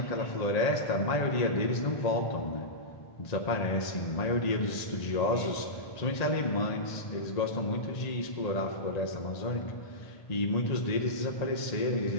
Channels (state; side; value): late; right; 1.8 ms